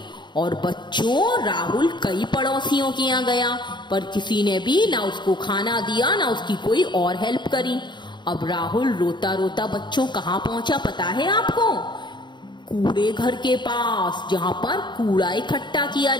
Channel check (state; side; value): late; right; 0.22 ms